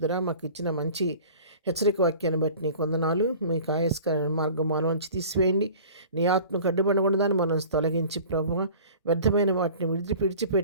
మాకు ఇచ్చిన మంచి హెచ్చరిక వాక్యాన్ని బట్టి నీకు వందనాలు. మీకు ఆయస్కరమైన మార్గం మాలోంచి తీసివేయండి. నీ ఆత్మకు అడ్డుపడకుండా దాన్ని మనం తొలగించి ప్రభువ వ్యర్థమైన వాటిని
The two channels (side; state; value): both; inverted; correlation -0.43